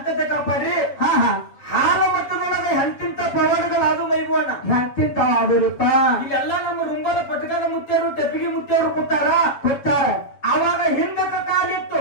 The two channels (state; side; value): late; right; 7.2 ms